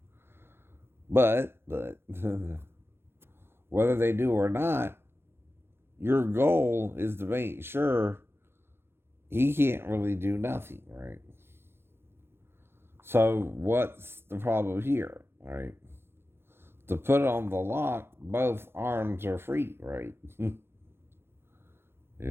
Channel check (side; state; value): left; late; 0.12 ms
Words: But whether they do or not, your goal is to make sure he can't really do nothing, right? So what's the problem here, right? To put on the lock, both arms are free, right?